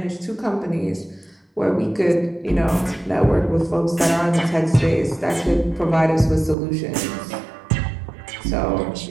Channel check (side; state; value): left; drops out; at 6.6 s